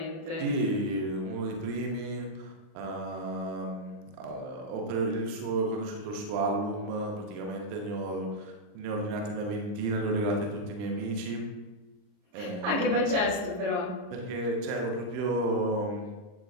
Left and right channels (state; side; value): late; left; 39 ms